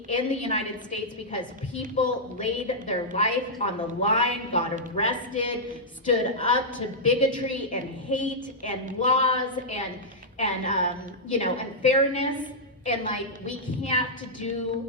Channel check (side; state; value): both; normal; correlation -0.09